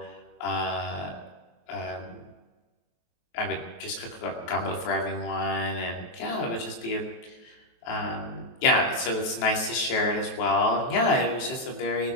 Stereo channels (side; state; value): right; late; 23 ms